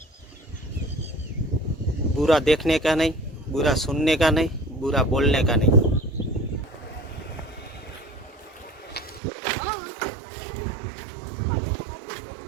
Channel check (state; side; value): drops out; left; at 9.2 s